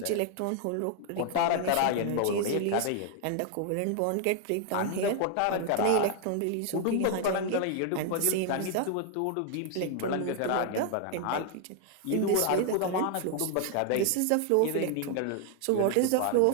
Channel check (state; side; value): different; both; correlation 0.00